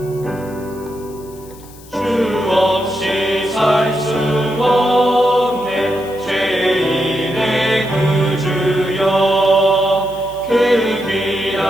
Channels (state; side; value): noise; left; hiss, 23 dB below the sound